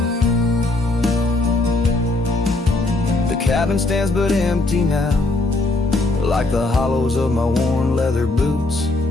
The cabin stands but empty now, like the hollows of my worn leather boots.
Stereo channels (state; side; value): quieter; right; 3.0 dB